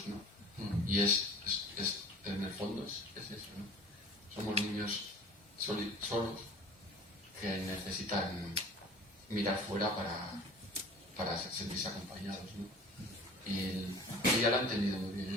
¿no? Y en el fondo es eso, ¿no? Somos niños solos que necesitan mirar fuera para sentirse acompañados, ¿no? Y ella lo ha entendido muy bien,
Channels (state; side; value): normal; both; correlation 0.43